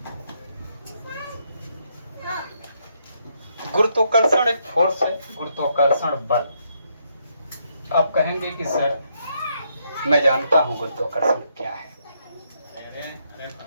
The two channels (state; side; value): inverted; both; correlation -0.76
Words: गुरुत्वाकर्षण एक फोर्स है, गुरुत्वाकर्षण बल। आप कहेंगे कि सर मैं जानता हूं गुरुत्वाकर्षण क्या है,